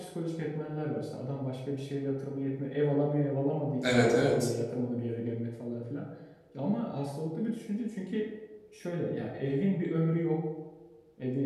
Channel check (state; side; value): identical; both; correlation 1.00